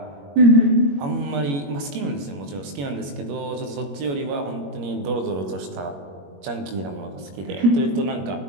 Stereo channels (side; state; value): left; late; 21 ms